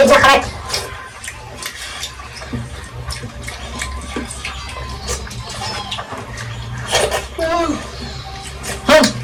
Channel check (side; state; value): both; identical; correlation 1.00